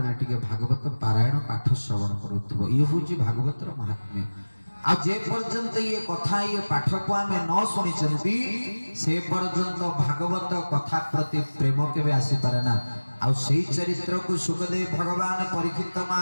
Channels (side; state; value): both; inverted; correlation -1.00